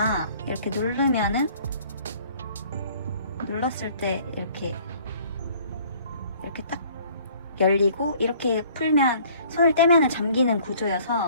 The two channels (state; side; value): inverted; both; correlation -0.55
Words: 이렇게 눌렀을 때 이렇게 딱 열리고 이렇게 풀면 손을 떼면 잠기는